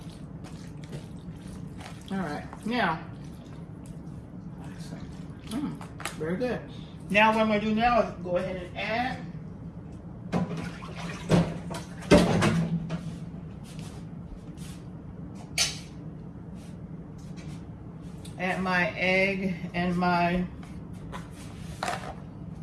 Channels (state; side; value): identical; both; correlation 1.00